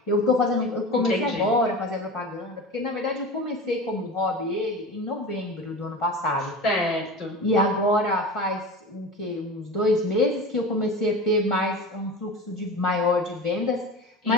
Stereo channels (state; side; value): normal; both; correlation 0.32